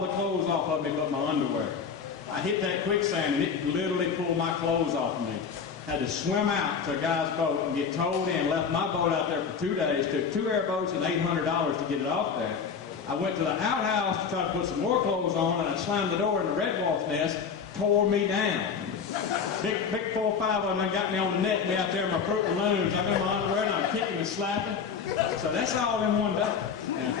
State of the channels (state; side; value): quieter; right; 6.3 dB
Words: clothes off of me but my underwear. I hit that quicksand, and it literally pulled my clothes off of me. Had to swim out to a guy's boat and get towed in, left my boat out there for 2 days, took 2 airboats and $800 to get it off there. I went to the outhouse to try to put some more clothes on, and I slammed the door, and the red wolf's nest tore me down. Big 4 or 5 of them got me on the neck, me out there in my Fruit Balloons. I'm in my underwear, and I'm kicking and slapping. So that's all in one day. Now,